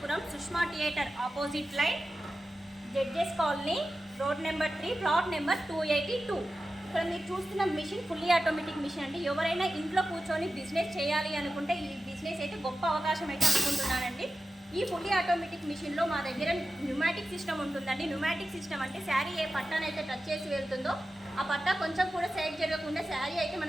Sushma theatre opposite lane, judges colony, road number 3, plot number 282. ఇక్కడ మీరు చూస్తున్న మిషన్ ఫుల్లీ ఆటోమేటిక్ మిషన్ అండి. ఎవరైనా ఇంట్లో కూర్చొని బిజినెస్ చేయాలి అనుకుంటే ఈ బిజినెస్ అయితే గొప్ప అవకాశం అయితే అనుకుంటున్నానండి. ఈ ఫుల్లీ ఆటోమేటిక్ మిషన్లో మా దగ్గర న్యూమాటిక్ సిస్టమ్ ఉంటుందండి. న్యూమాటిక్ సిస్టమ్ అంటే శారీ ఏ పట్టానైతే టచ్ చేసి వెళ్తుందో ఆ పట్టా కొంచెం కూడా సైడ్ జరగకుండా శారీ అయితే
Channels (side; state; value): both; normal; correlation 0.93